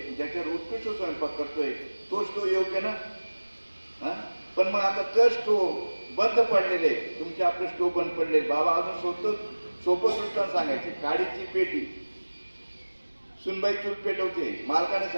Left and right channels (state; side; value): inverted; both; correlation -1.00